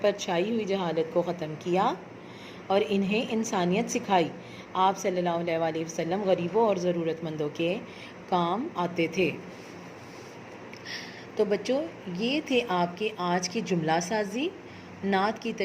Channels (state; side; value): identical; both; correlation 1.00